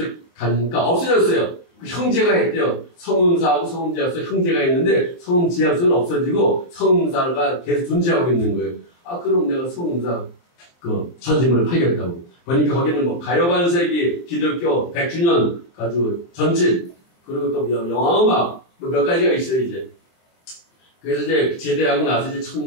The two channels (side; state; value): right; late; 23 ms